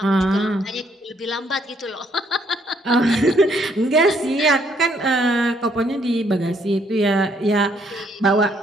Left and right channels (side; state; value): both; normal; correlation 0.69